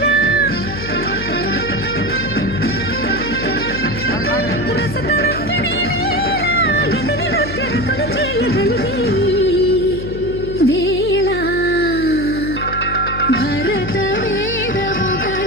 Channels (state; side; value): noise; left; hum, 9 dB below the sound